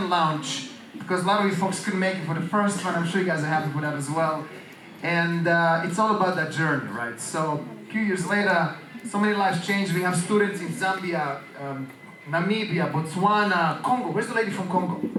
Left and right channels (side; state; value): both; identical; correlation 1.00